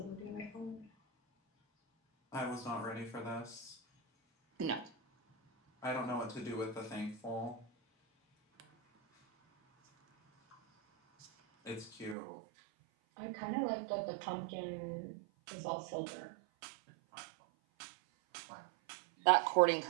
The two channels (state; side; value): drops out; left; at 12.2 s